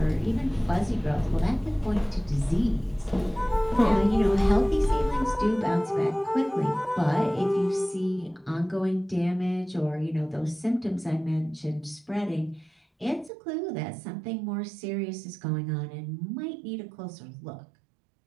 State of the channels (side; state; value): left; drops out; at 13.3 s